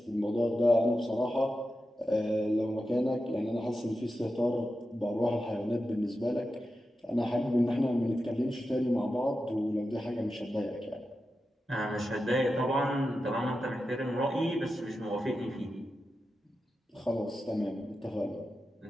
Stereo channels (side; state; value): both; normal; correlation 0.91